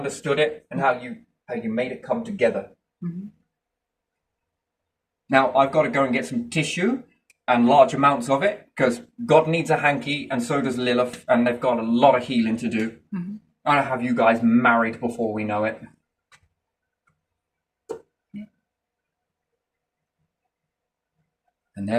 it, and how you made it come together. Mm-hmm. Now, I've got to go and get some tissue and large amounts of it because God needs a hanky and so does Lilith, and they've got a lot of healing to do. Mm-hmm. I'll have you guys married before we know it. Yeah. And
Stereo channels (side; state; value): both; identical; correlation 1.00